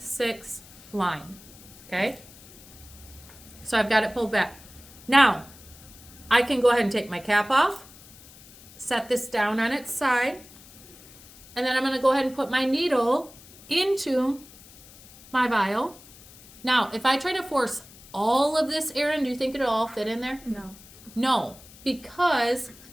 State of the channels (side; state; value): left; noise; hiss, 21 dB below the sound